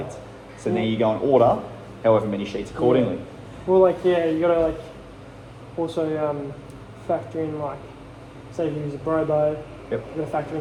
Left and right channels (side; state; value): both; identical; correlation 1.00